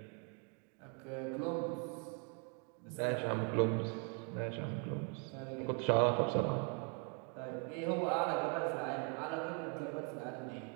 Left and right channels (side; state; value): left; quieter; 38.4 dB